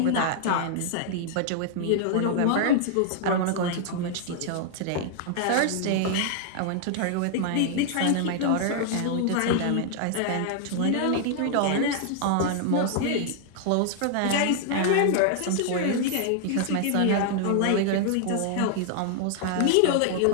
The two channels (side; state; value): both; different; correlation 0.00